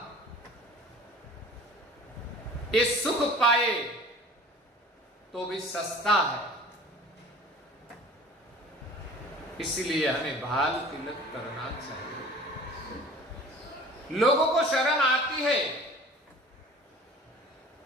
ये सुख पाए तो भी सस्ता है, इसलिए हमें बाल तिलक करना चाहिए। लोगों को शर्म आती है,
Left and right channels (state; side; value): normal; both; correlation 0.45